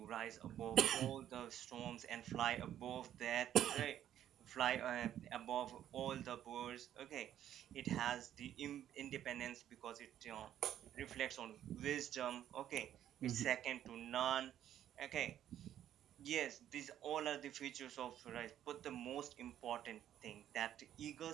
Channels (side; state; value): left; quieter; 11.1 dB